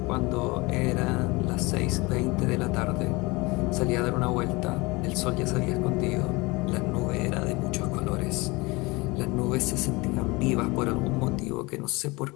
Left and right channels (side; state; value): right; quieter; 24.4 dB